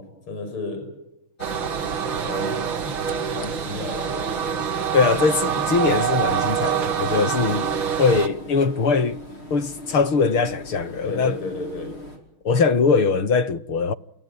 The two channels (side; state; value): right; late; 6.7 ms